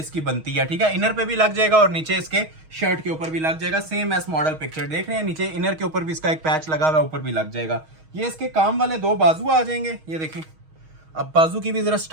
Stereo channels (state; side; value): late; left; 6.3 ms